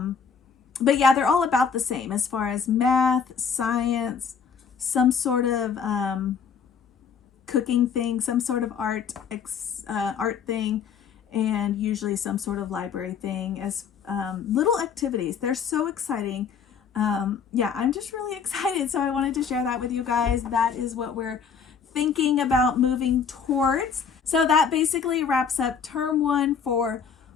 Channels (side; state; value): right; quieter; 6.5 dB